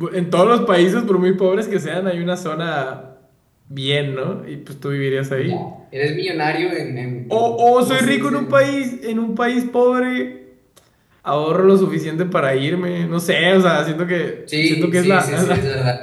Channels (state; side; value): identical; both; correlation 1.00